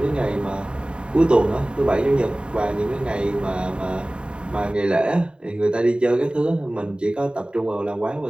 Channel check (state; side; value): late; left; 0.052 ms